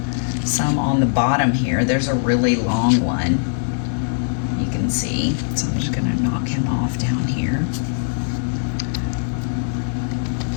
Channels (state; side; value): silent; right; digital silence